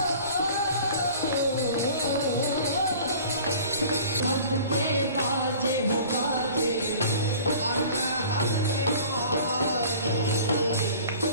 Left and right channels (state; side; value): inverted; both; correlation -0.45